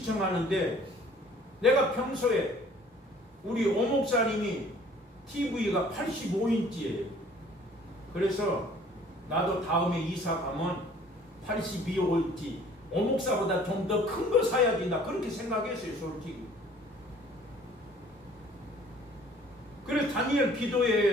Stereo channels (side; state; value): both; normal; correlation 0.54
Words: 내가 평소에 우리 오목사님이 TV가 85인치예요. 그래서 나도 다음에 이사 가면 82인치 오목사보다 좀 더 큰 거 사야지 나 그렇게 생각했어요. 솔직히. 그래서 다니엘